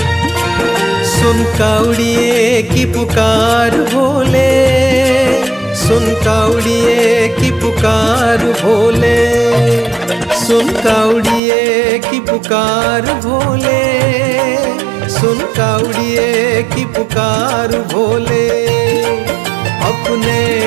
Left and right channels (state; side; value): drops out; left; at 11.4 s